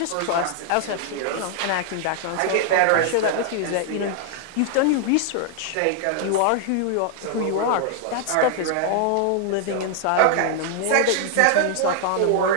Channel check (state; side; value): different; both; correlation 0.00